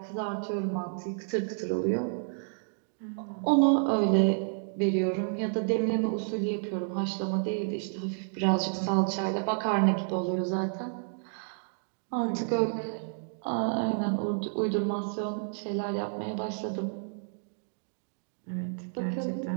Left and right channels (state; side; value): silent; left; digital silence